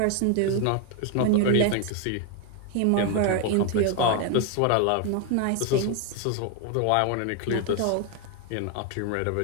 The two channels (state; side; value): different; both; correlation 0.01